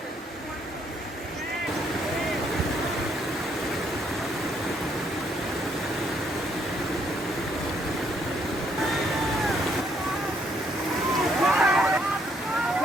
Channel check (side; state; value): both; normal; correlation 0.70